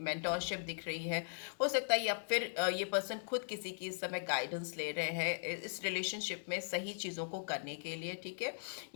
दिख रही है। हो सकता है या फिर ये पर्सन खुद किसी की इस समय गाइडेंस ले रहे हैं इस रिलेशनशिप में सही चीज़ों को करने के लिए, ठीक है।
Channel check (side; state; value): right; silent; digital silence